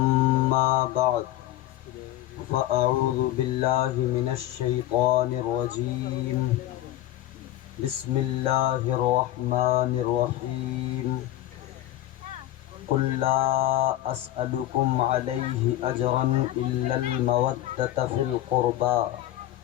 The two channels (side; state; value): right; quieter; 14.3 dB